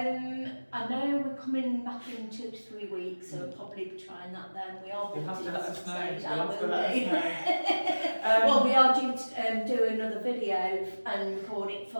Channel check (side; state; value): both; inverted; correlation -1.00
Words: I know we're coming back in 2 to 3 weeks, so we'll probably be trying that then. We are You'll have to let us know. Well, we are due to do another video and record it